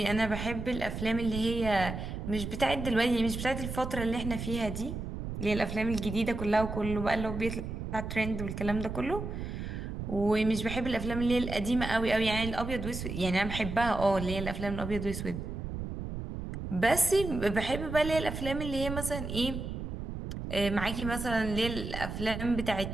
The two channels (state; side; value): noise; right; rumble, 6 dB below the sound